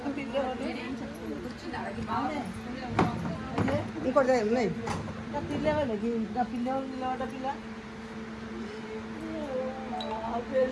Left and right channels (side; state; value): both; identical; correlation 1.00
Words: పిల్లవాళ్ళు ఇంకోటి ఉన్నాయి. పిల్లవాళ్ళు ఇంకా పిల్లవాళ్ళు నిలబడ్డ పిల్ల